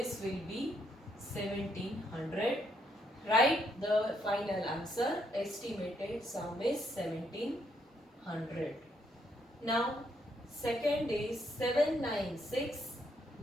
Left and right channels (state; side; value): normal; both; correlation 0.74